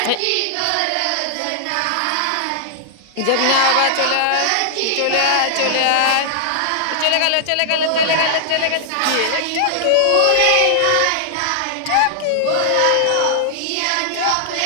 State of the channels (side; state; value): both; different; correlation -0.01